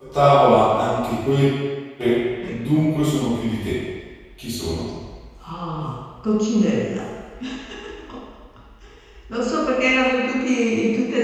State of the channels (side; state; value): both; identical; correlation 1.00